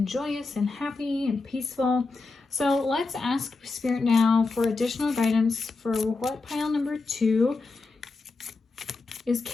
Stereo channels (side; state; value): right; quieter; 3.9 dB